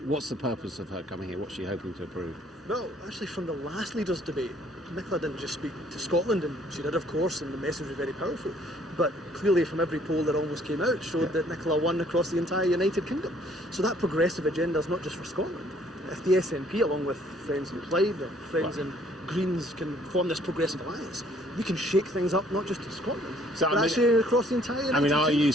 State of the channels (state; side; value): normal; both; correlation 0.61